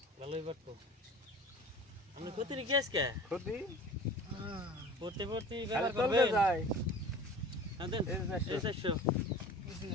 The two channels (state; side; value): normal; both; correlation 0.42